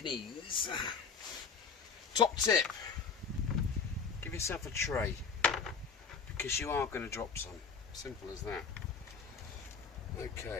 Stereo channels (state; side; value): quieter; right; 5.6 dB